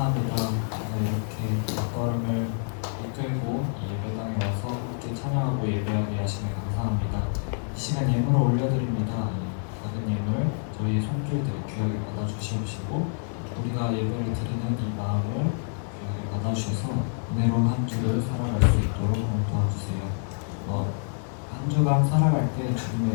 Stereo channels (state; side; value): silent; right; digital silence